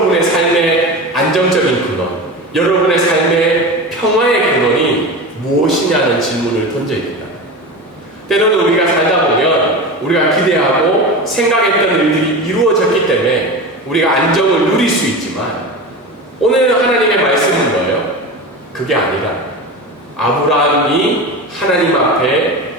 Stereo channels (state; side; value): normal; both; correlation 0.27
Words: 삶의 안정적인 근원, 여러분의 삶의 평화의 근원이 무엇이냐는 질문을 던져야 된다. 때로는 우리가 살다 보면 우리가 기대하고 생각했던 일들이 이루어졌기 때문에 우리가 안정을 누릴 수 있지만, 오늘 하나님의 말씀은 뭐예요? 그게 아니라 아브라함이 하나님 앞에